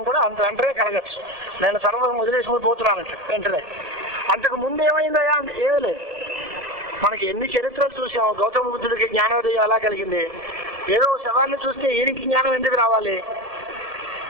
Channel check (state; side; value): late; left; 1.7 ms